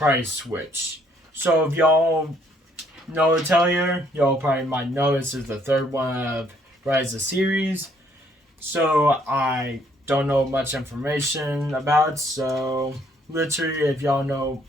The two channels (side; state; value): both; normal; correlation 0.66